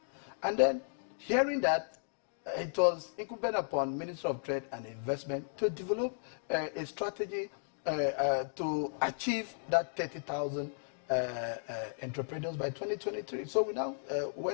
And then hearing that, it was incumbent upon Minister of Trade and Investment to develop a strategy to achieve that 30,000 entrepreneurs by 2023. So we now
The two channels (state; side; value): silent; right; digital silence